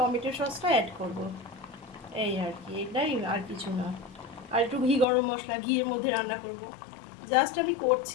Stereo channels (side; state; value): right; drops out; at 5.1 s